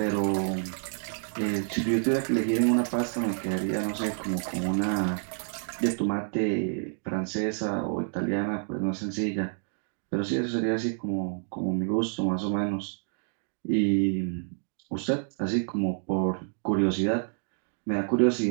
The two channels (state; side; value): silent; left; 59 dB below the other